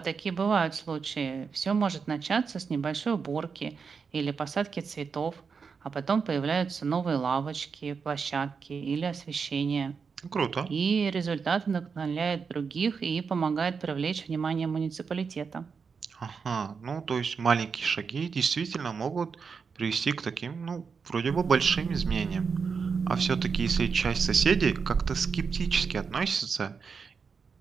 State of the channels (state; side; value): quieter; left; 5.6 dB